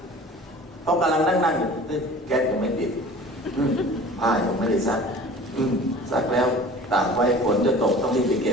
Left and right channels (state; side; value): normal; both; correlation 0.43